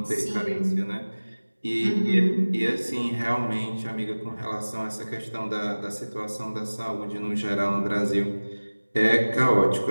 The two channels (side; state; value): both; inverted; correlation -1.00